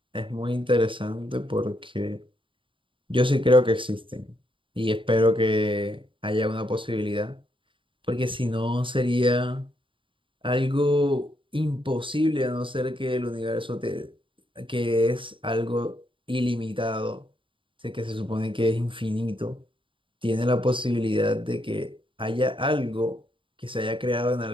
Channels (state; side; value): late; left; 0.25 ms